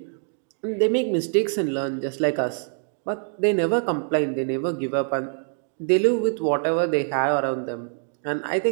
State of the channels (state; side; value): silent; left; digital silence